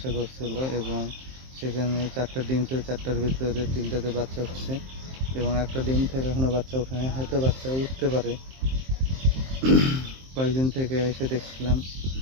করছিল এবং সেখানে 4টা ডিম ছিল, 4টার ভিতরে 3টাতে বাচ্চা হচ্ছে এবং একটা ডিম থেকে এখনও বাচ্চা ওঠেনি, হয়তো বাচ্চা উঠতে পারে। কয়েকদিন থেকে এসে দেখছিলাম,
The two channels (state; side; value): late; left; 23 ms